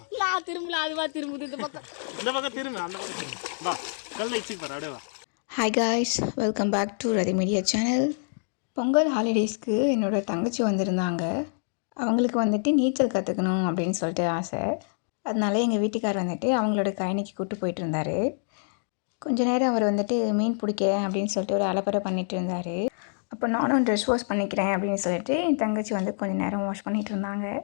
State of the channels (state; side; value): silent; right; digital silence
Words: லா திரும்பல அதுவா திரும்புது இந்த பக்கம் திரும்ப அந்த பக்கம் திரும்ப வா கல்ல இச்சி பாரு அப்படியே வா. Hi guys, welcome back to Rathi media channel. Pongal ஹாலிடேஸ்க்கு என்னோடய தங்கச்சி வந்திருந்தாங்க. அவங்களுக்கு வந்துட்டு நீச்சல் கற்றுக்கணும் அப்படின்னு சொல்லிட்டு ஆசை. அதனால எங்கள் வீட்டுக்கார் வந்துட்டு அவங்களோட கயனிக்கு கூப்பிட்டு போயிட்டு இருந்தார். கொஞ்ச நேரம் அவர் வந்துட்டு மீன் பிடிக்கிறேன் அப்படின்னு சொல்லிட்டு ஒரு அலப்பறை பண்ணிகிட்டு இருந்தார். அப்போ நானும் ட்ரெஸ் வாஷ் பண்ணிக்கிறேன் அப்படின்னு சொல்லிட்டு என் தங்கச்சி வந்து கொஞ்சம் நேரம் வாஷ் பண்ணிகிட்டு இருந்தாங்க.